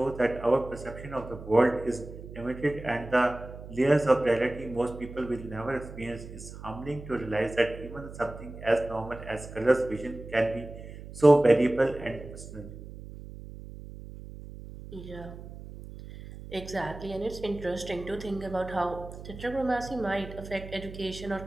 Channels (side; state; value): right; noise; hum, 13 dB below the sound